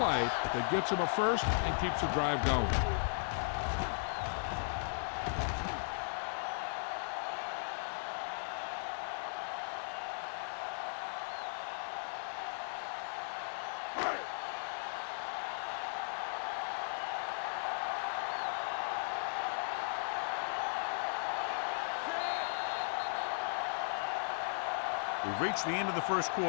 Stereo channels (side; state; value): right; silent; digital silence